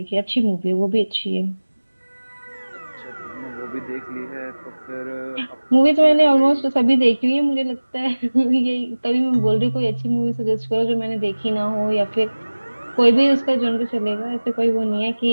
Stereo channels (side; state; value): both; inverted; correlation -1.00